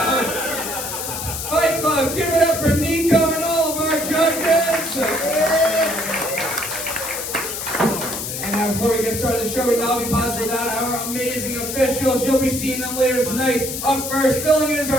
Fight Club, give it up for Niko and all of our judges. And now before we get started, the show would not be possible without our amazing officials. You'll be seeing them later tonight. Up first, filling in is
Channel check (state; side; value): noise; left; hiss, 5 dB below the sound